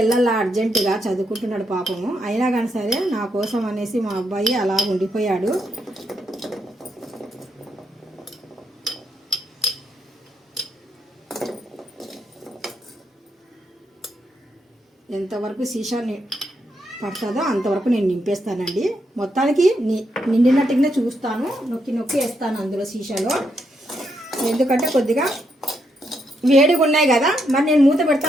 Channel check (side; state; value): both; normal; correlation 0.79